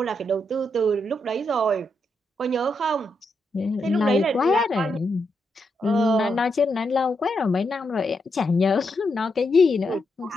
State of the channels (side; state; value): both; normal; correlation 0.82